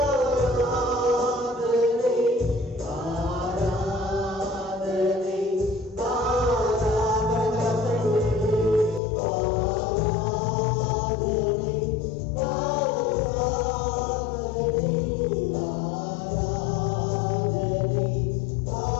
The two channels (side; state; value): right; drops out; at 9.0 s